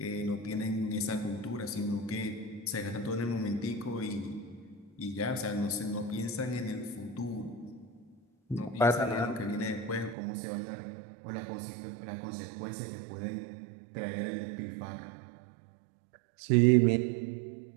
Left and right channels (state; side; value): drops out; left; at 10.2 s